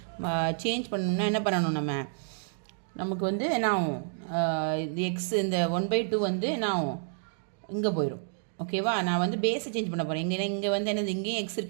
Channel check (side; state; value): left; silent; digital silence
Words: சேஞ்ச் பண்ணனும்னா என்ன பண்ணனும் நமக்கு வந்து என்ன ஆகும்? இந்த x இந்த 1/2 வந்து என்ன ஆகும்? இங்க போயிடும். ஓகேவா? நான் வந்து பேஸை சேஞ்ச் பண்ண போகிறேன். இங்கே வந்து என்னது இங்கேயும் எக்ஸ்